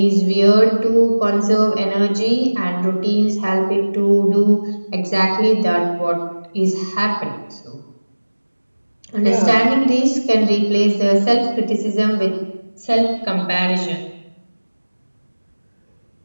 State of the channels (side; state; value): both; inverted; correlation -1.00